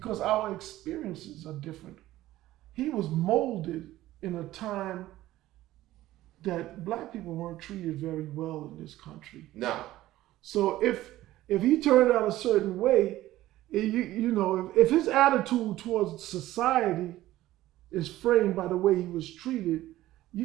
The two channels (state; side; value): quieter; left; 15.4 dB